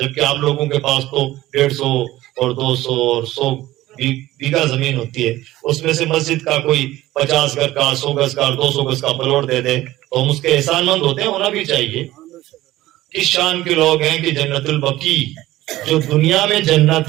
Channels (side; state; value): left; quieter; 16.2 dB